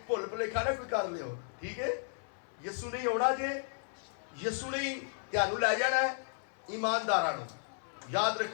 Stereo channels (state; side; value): silent; right; 55 dB below the other